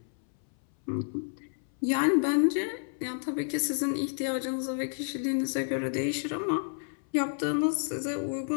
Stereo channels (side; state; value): right; silent; 58 dB below the other